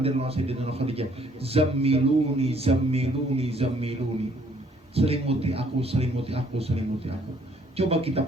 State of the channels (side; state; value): both; normal; correlation 0.63